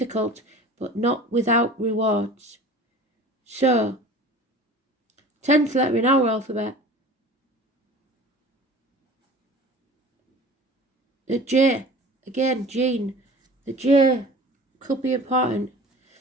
but not without rewards. So, 10th letter in our alphabet, the J, again, Gene. The J could be important.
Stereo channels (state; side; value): normal; both; correlation 0.42